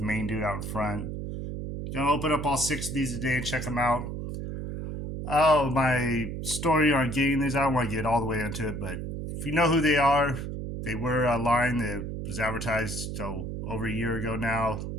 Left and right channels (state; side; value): noise; right; hum, 6 dB below the sound